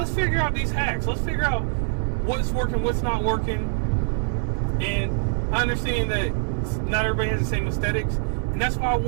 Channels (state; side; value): silent; left; 62 dB below the other